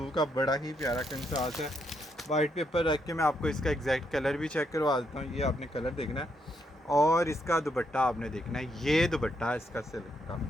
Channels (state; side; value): normal; both; correlation 0.77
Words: का बड़ा ही प्यारा कंट्रास्ट है। वाइट पेपर रख के मैं आपको इसका एग्जैक्ट कलर भी चेक करवा देता हूँ। ये आपने कलर देखना है और इसका दुपट्टा आपने देखना है। ये दुपट्टा है इसका सिल्क का,